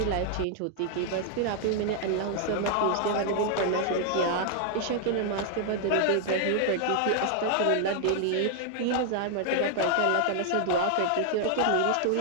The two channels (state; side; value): different; both; correlation -0.01